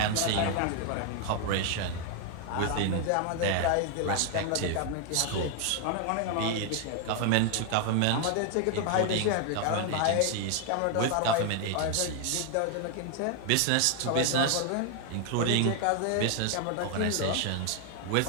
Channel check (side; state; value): both; different; correlation 0.00